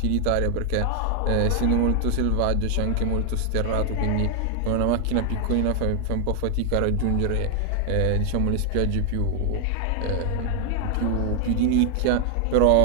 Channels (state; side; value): different; both; correlation 0.00